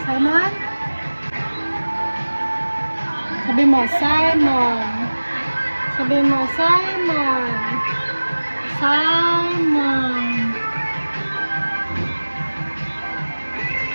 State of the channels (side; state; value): both; inverted; correlation -1.00